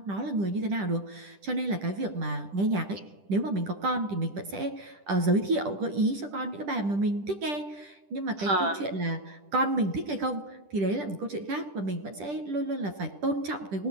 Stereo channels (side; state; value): left; late; 10 ms